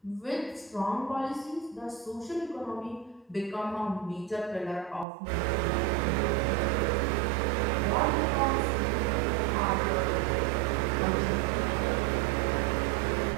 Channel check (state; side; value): drops out; left; at 5.1 s